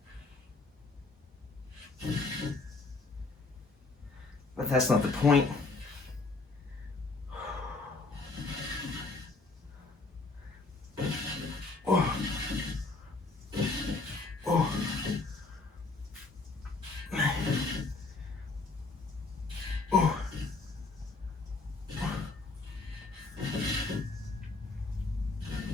But that's not the point. Oh. Oh. Oh.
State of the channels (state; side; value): quieter; right; 3.6 dB